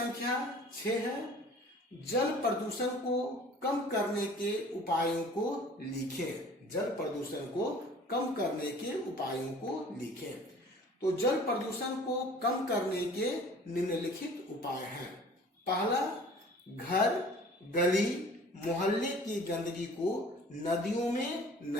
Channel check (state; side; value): normal; both; correlation 0.48